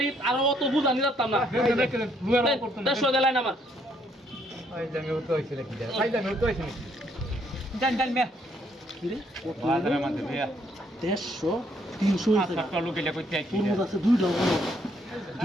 আর অত বুঝা নিলাম না রেখে দেন লুয়ার করতে 150 দেলাই না আমার ওই জামে উঠতে হইছে নাকি যা ভাই জামে উঠতে হইছে জান জান মে কি রে বাজারে মধ্যে ভাইয়া 150 300 টাকা লোক এলা কইতে আইছি তোর মধ্যে আছে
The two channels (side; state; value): both; normal; correlation 0.69